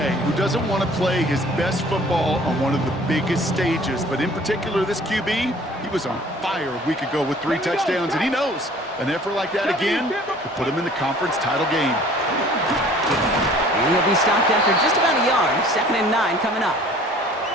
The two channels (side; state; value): both; normal; correlation 0.51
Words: who doesn't want to play his best football on one of the biggest stages. But in particular, this QB, he was on fire a week ago with 3 touchdowns. And he knows an effort like that again could put him in the conference title game. And he'll be stopped after just about a yard. 2nd and 9 coming up.